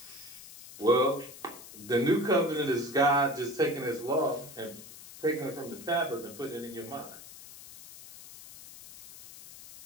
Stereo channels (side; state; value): left; noise; hiss, 16 dB below the sound